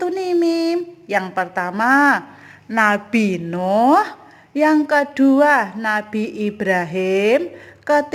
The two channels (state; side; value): identical; both; correlation 1.00